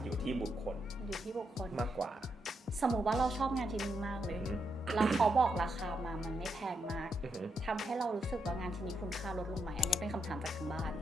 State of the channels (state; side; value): normal; both; correlation 0.81